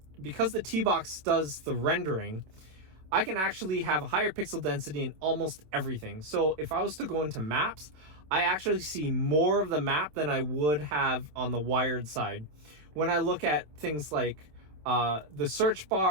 T-Box does the rendering, I can actually have a higher pixel density in almost everything. So if I was to go into Maps, I actually see more of the map than I would have on the wired side. When I look at things like the search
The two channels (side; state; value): left; late; 27 ms